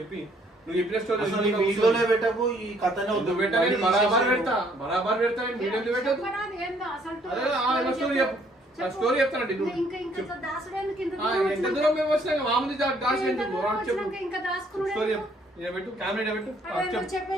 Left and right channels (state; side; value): normal; both; correlation 0.64